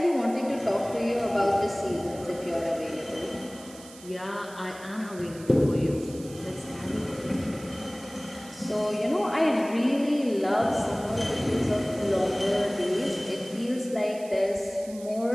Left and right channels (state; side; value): noise; right; hiss, 19 dB below the sound